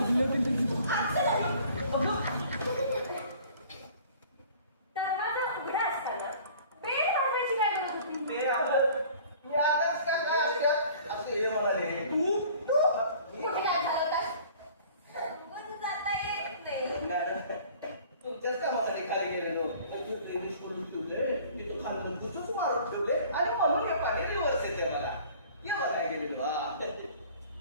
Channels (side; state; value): both; inverted; correlation -0.49